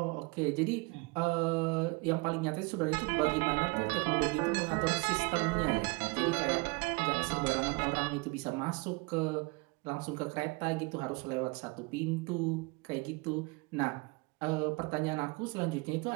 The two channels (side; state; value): left; quieter; 27.2 dB